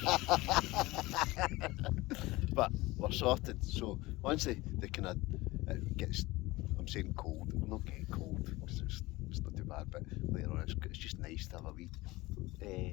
But we're sorted, so once they kind of it gets, I'm saying cold, we're not getting cold because it's not too bad, but later on it's just nice to have a wee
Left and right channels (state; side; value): quieter; right; 20.3 dB